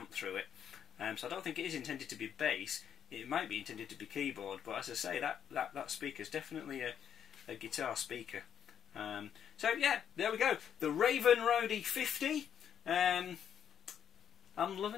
through it. So I don't think it is intended to be bass. It might be intended to be keyboard, but as I say, that speaker is definitely a guitar speaker. So yeah, there we go. The Raven Roadie 50. I'm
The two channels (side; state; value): right; quieter; 8.8 dB